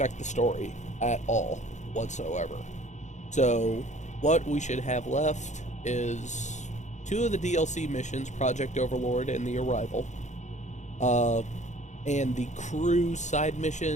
the story at all whatsoever. So what we should have left is 2 of the DLC missions, Project Overlord and The Arrival, and the crew side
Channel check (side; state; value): right; late; 0.34 ms